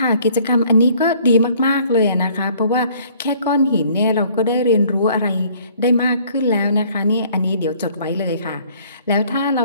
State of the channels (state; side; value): inverted; both; correlation -0.58